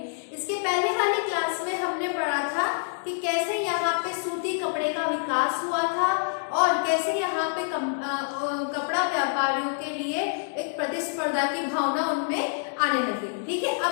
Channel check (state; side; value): silent; right; digital silence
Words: इसके पहले वाली क्लास में हमने पढ़ा था कि कैसे यहाँ पे सूती कपड़े का विकास हुआ था और कैसे यहाँ पे कपड़ा व्यापारियों के लिए एक प्रतिस्पर्धा की भावना उनमें आने लगी, ठीक है।